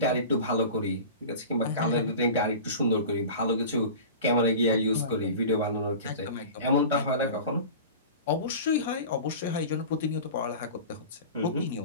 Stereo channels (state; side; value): inverted; both; correlation -0.35